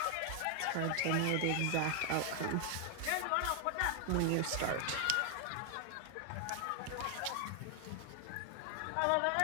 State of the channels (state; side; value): different; both; correlation 0.00